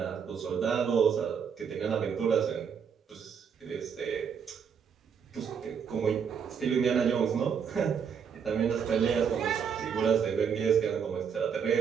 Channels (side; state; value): left; quieter; 7.0 dB